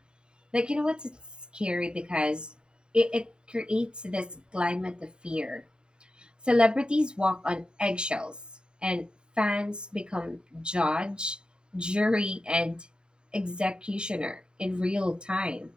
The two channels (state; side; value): late; left; 0.049 ms